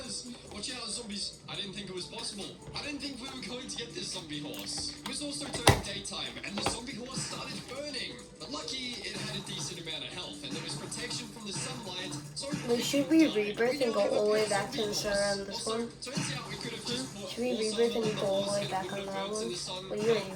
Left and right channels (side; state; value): both; identical; correlation 1.00